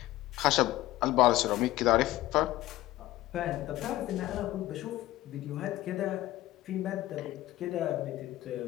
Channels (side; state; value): right; quieter; 16.2 dB